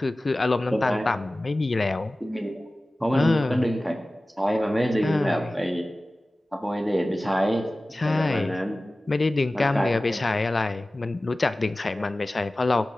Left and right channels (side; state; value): both; normal; correlation 0.97